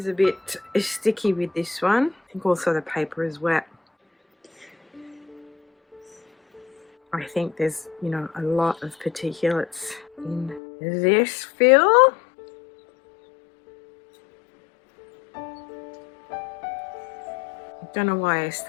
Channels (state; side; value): drops out; right; at 10.6 s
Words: a bit sticky with this one. I think also the paper is wet. I think there's, you know, a lot of particulates in this fill. Don't know why I